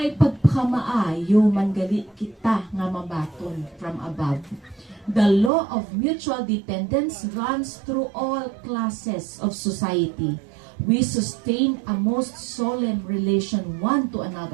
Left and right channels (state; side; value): drops out; left; at 5.5 s